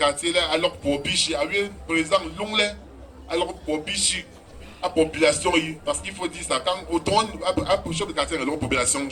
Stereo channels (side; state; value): both; identical; correlation 1.00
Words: alors pour Bichi, président Longley, alors pour Bichi, la population, parce qu'il faut dire ça, quand autant à chef de quartier, la population,